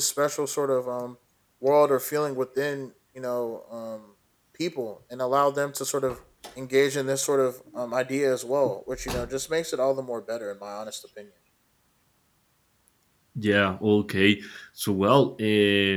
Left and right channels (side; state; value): both; identical; correlation 1.00